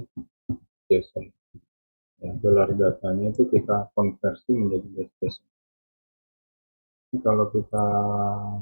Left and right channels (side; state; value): both; inverted; correlation -1.00